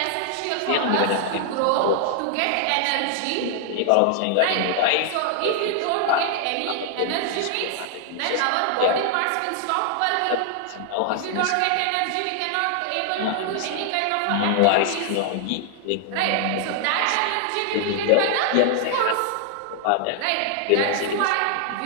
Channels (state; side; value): different; both; correlation 0.00